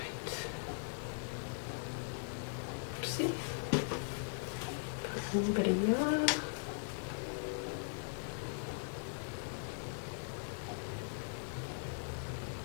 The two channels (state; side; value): silent; right; digital silence